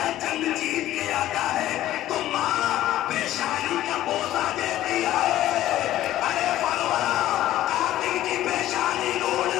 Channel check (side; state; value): right; quieter; 13.8 dB